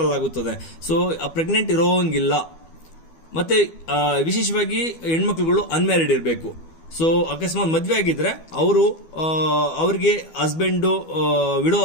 ಸೊ ಪ್ರೆಗ್ನೆಂಟ್ ಇರೋಂಗಿಲ್ಲ. ಮತ್ತೆ ವಿಶೇಷವಾಗಿ ಹೆಣ್ಮಕ್ಳುಗಳು ಅನ್ಮ್ಯಾರಿಡ್ ಇರಬೇಕು. ಸೊ ಅಕಸ್ಮಾತ್ ಮದ್ವೆ ಆಗಿದ್ರೆ ಅವ್ರಿಗೆ ಹಸ್ಬೆಂಡ್ ವಿಡೋ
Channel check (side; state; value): right; late; 12 ms